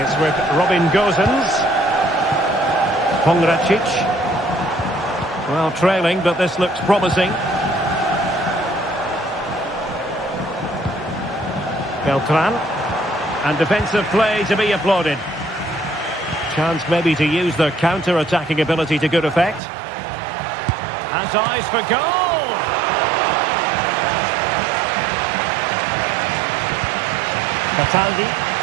with Robin Gozens. Pongracic. Well, trailing, but this looks promising. Beltran. And defensive play to be applauded. Chance maybe to use their counter-attacking ability to good effect. Has eyes for goal! Cataldi.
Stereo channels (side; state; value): left; drops out; at 19.6 s